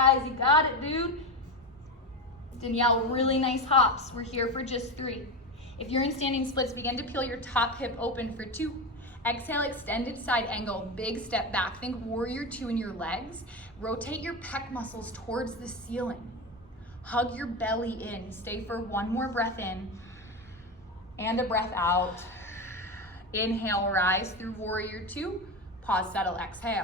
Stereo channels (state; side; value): normal; both; correlation 0.19